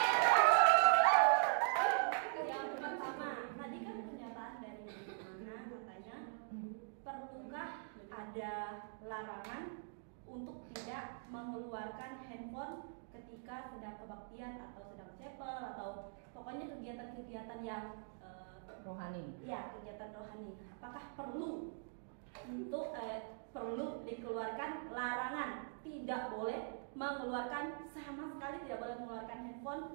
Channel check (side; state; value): left; silent; digital silence